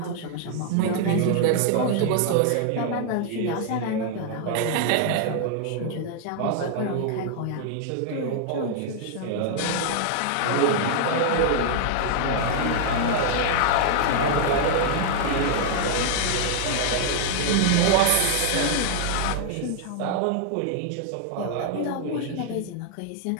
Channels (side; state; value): both; different; correlation 0.00